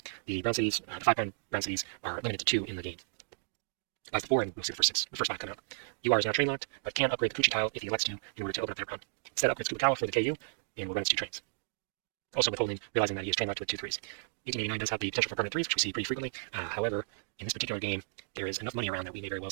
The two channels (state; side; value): silent; left; digital silence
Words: The brown cities, the 5 brown cities, are limited to 2 in the game. That's the 4, and we'll see the first 5 come out. UR is now train locked, but can upgrade the Kuchi tile if he elects to in order to open up their brown. Instead, upgrades Kubikawa for the KU, and will run its 2 trains. Also withholding, realizing that he is train locked with 2 3s. 1889 does have the potential for permanent 3s, which we see pretty frequently. However, in this particular game, there is enough money around that we may very well